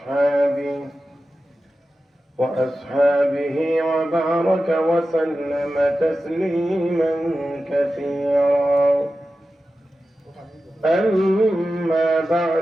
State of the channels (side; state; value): both; normal; correlation 0.93